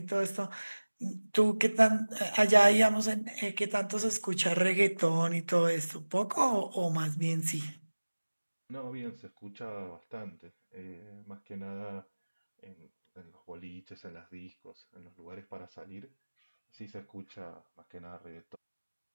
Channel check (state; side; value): inverted; both; correlation -1.00